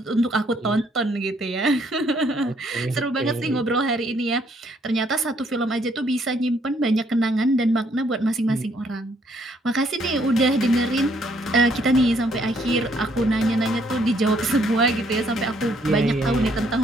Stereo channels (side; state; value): both; normal; correlation 0.68